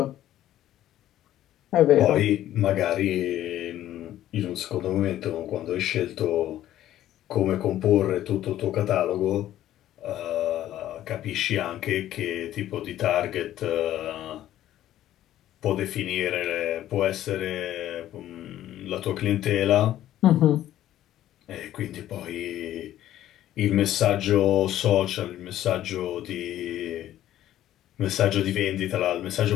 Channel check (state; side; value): quieter; right; 12.9 dB